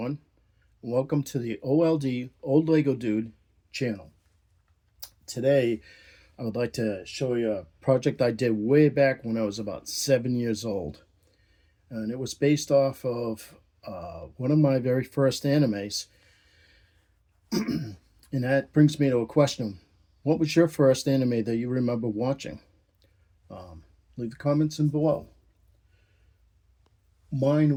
Welcome to the OLD Old Lego Dude channel. Today, I would like to show you a project I did way back when I was about 7 years old. And it was based off of one of my very first animes. And that brings me to a question. What was your first anime that you remember watching? Leave the comments in below.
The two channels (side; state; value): both; identical; correlation 1.00